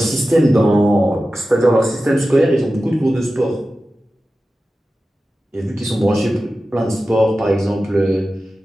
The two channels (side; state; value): both; normal; correlation 0.94